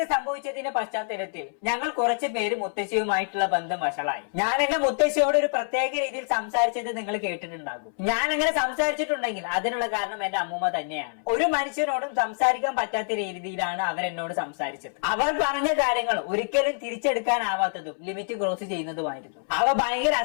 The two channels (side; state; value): right; silent; 61 dB below the other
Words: സംഭവിച്ചതിന്റെ പശ്ചാത്തലത്തിൽ ഞങ്ങൾ കുറച്ച് പേര് മുത്തശ്ശിയുമായിട്ടുള്ള ബന്ധം വഷളായി. ഞാൻ എന്റെ മുത്തശ്ശിയോട് ഒരു പ്രത്യേക രീതിയിൽ സംസാരിച്ചത് നിങ്ങൾ കേട്ടിട്ടുണ്ടാകും. ഞാൻ അങ്ങനെ സംസാരിച്ചിട്ടുണ്ടെങ്കിൽ അതിനുള്ള കാരണം എന്റെ അമ്മൂമ്മ തന്നെയാണ്. ഒരു മനുഷ്യനോടും സംസാരിക്കാൻ പറ്റാത്ത രീതിയിലാണ് അവർ എന്നോട് സംസാരിച്ചത്. അവർ പറഞ്ഞ കാര്യങ്ങൾ ഒരിക്കലും തിരിച്ചെടുക്കാനാവാത്തതും ലിമിറ്റ് ക്രോസ് ചെയ്യുന്നതുമായിരുന്നു. അവ ഭയങ്കര